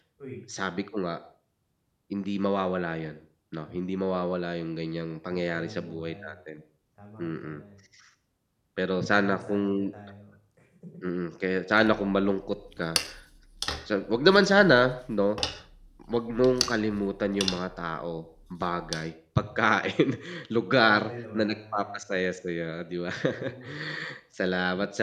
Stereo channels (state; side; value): identical; both; correlation 1.00